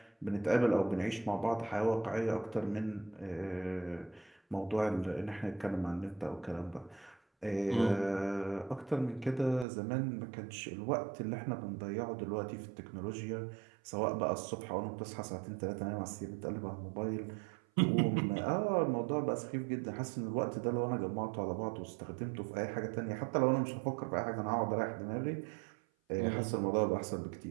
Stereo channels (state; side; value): drops out; left; at 9.7 s